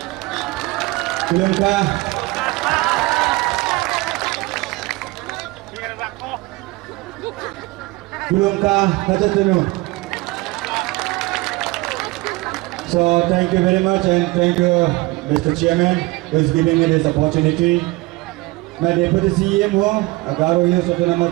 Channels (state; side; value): quieter; left; 22.1 dB